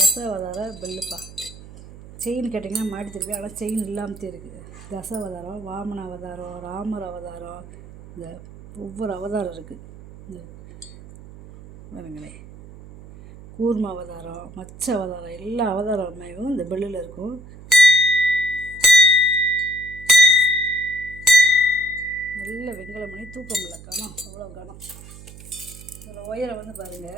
பெல்லுப்பா. செயின் கேட்டிங்கன்னா மாட்டி தருவேன், ஆனால் செயின் இல்லாமத்தே இருக்குது. தசாவதாரம், வாமன அவதாரம், ராமர் அவதாரம், இந்த ஒவ்வொரு அவதாரம் இருக்குது. இந்த பாருங்களேன், கூர்ம அவதாரம், மச்ச அவதாரம், எல்லா அவதாரமையும் இந்த பெல்லில் இருக்கும். நல்ல வெங்கலம் மணி, தூக்கம் இல்லை, கனம் அவ்வளோ கனம். இதோட உயரம் வந்து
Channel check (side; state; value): right; noise; hum, 17 dB below the sound